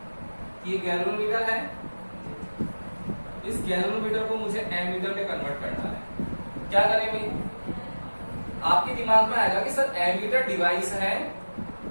कि ये गैल्वेनोमीटर है, इस गैल्वेनोमीटर को मुझे एमीटर में कन्वर्ट करना है। क्या करें भाई? आपके दिमाग में आएगा कि सर एमीटर डिवाइस है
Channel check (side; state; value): both; inverted; correlation -1.00